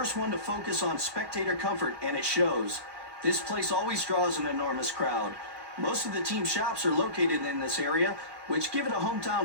one to focus on spectator comfort, and it shows. This place always draws an enormous crowd. Most of the team shops are located in this area, which give it a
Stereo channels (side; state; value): left; late; 1.2 ms